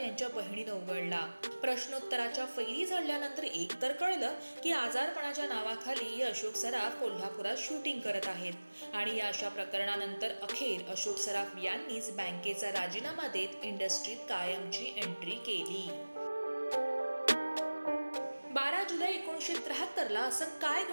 यांच्या बहिणीनं उघडला. प्रश्नोत्तराच्या फैरी झाल्यानंतर एक तर कळलं की आजारपणाच्या नावाखाली अशोक सराफ कोल्हापुरात शूटिंग करत आहेत. आणि या अशा प्रकरणानंतर अखेर अशोक सराफ यांनीच बँकेचा राजीनामा देत इंडस्ट्रीत कायमची एंट्री केली. 12 जुलै 1973ला असं काय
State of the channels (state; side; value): inverted; both; correlation -1.00